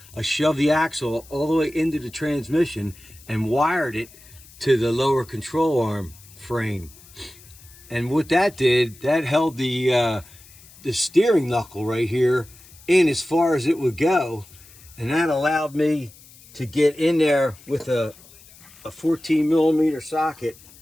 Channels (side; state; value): left; noise; hiss, 23 dB below the sound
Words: I shoved the axle all the way into the transmission and wired it to the lower control arm frame. And what that did, that held the steering knuckle right here in as far as it would go, and that allowed me to get in there with a 14 millimeter socket